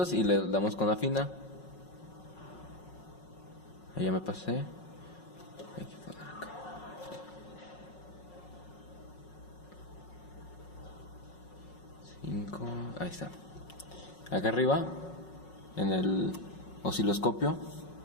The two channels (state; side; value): late; right; 5.4 ms